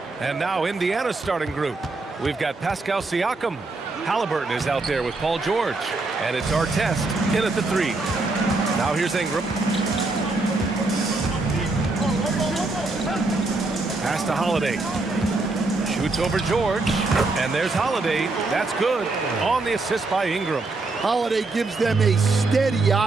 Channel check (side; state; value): left; quieter; 3.4 dB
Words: And now Indiana's starting group. We've got Pascal Siakam. Halliburton is out there with Paul George. And it's Artest in at the 3. Now here's Ingram. Pass to Holiday. Shoots over George. And there's Holiday. That's good. On the assist by Ingram. Holiday gives them a steady